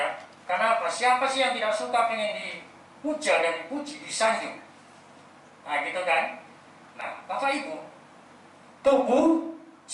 Karena apa? Siapa sih yang tidak suka pengen dipuja dan dipuji, disanjung? Nah, gitu kan? Nah, Bapak Ibu, tubuh,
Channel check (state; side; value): identical; both; correlation 1.00